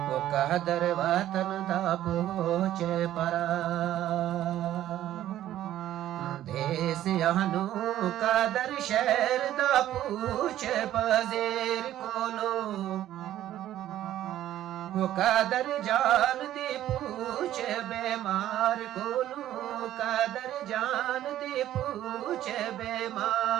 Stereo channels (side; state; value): left; quieter; 12.8 dB